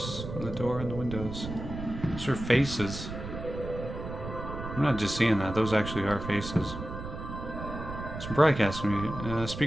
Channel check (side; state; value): right; noise; rumble, 8 dB below the sound